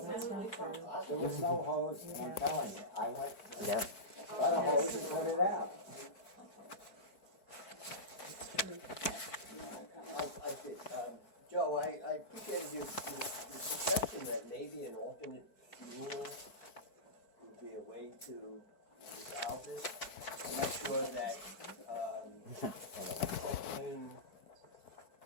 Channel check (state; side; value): late; right; 4.5 ms